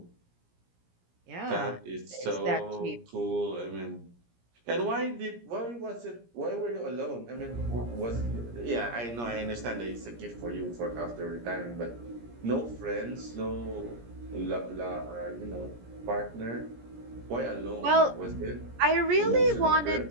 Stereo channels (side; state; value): left; late; 17 ms